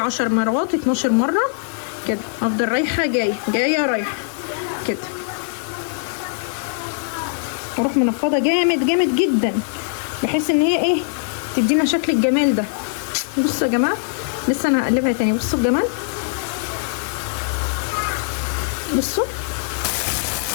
مرات 12 مره كده، افضل رايحه جايه رايحه كده، واروح منفضه جامد جامد جدا بحيث ان هي ايه تدينا شكل الجمال ده. بصوا يا جماعه لسه انا هقلبها تاني. بصوا الجمال، بصوا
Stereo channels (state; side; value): silent; right; digital silence